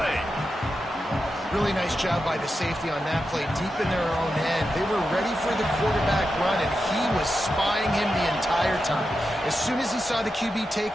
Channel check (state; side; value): normal; both; correlation 0.89